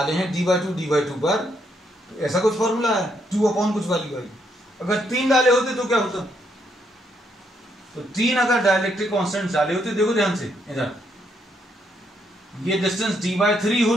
हैं d/2 पर, तो ऐसा कुछ फॉर्मूला है 2 कुछ वैल्यू आई। अगर 3 डाले होते तो क्या होता? तो 3 अगर डाइलेक्ट्रिक कांस्टेंट डाले होते, देखो ध्यान से इधर, ये डिस्टेंस d/3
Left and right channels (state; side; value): normal; both; correlation 0.75